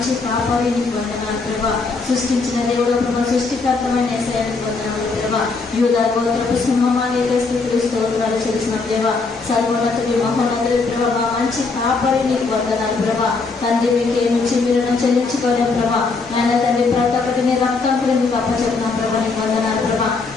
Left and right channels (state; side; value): quieter; right; 4.2 dB